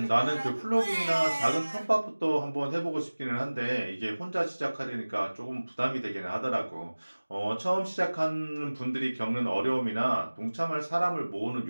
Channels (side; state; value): both; inverted; correlation -1.00